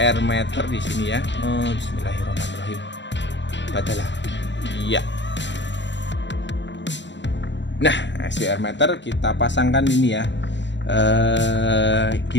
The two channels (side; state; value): right; late; 0.52 ms